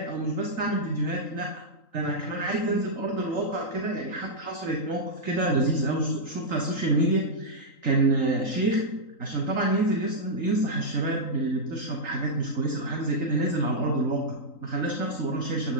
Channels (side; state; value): right; late; 3.9 ms